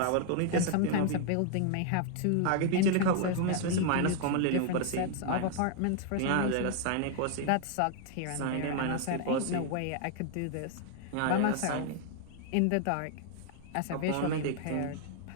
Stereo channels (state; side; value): different; both; correlation 0.00